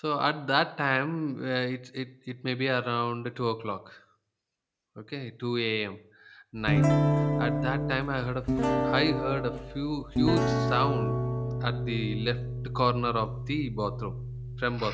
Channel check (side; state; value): both; identical; correlation 1.00